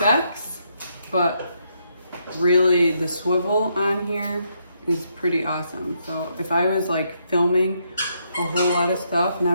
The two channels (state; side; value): inverted; both; correlation -0.77